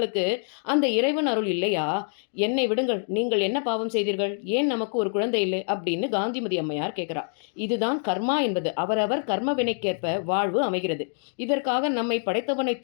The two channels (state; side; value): silent; right; 61 dB below the other